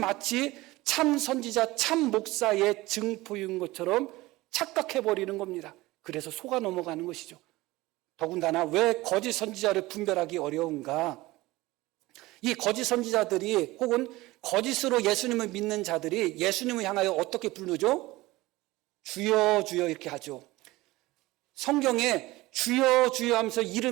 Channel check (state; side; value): quieter; left; 19.5 dB